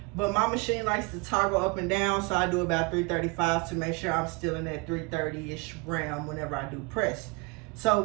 but my machine likes to toggle up and down, so I do about 335 to make sure I'm still in that 330-ish realm whenever I do press. So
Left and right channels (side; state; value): left; quieter; 27.4 dB